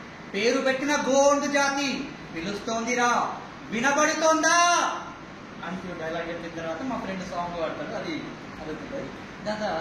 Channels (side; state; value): both; identical; correlation 1.00